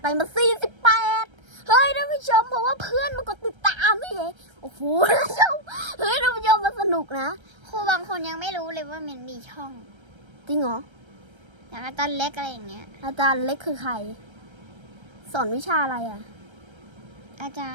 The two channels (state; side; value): late; left; 1.3 ms